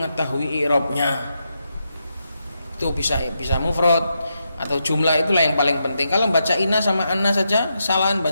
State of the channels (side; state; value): both; inverted; correlation -0.84